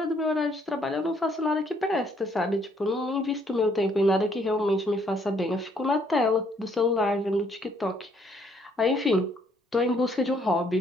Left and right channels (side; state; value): both; normal; correlation 0.67